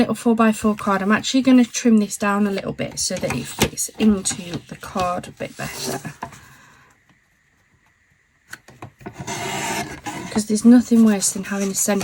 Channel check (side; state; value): both; identical; correlation 1.00